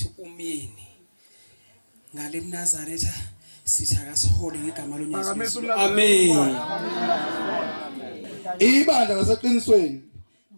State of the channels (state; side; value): inverted; both; correlation -1.00